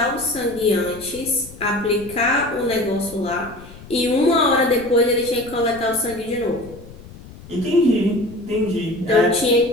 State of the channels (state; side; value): noise; left; rumble, 18 dB below the sound